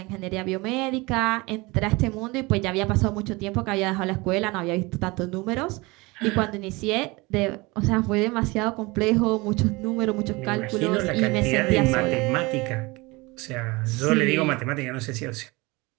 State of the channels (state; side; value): quieter; left; 24.1 dB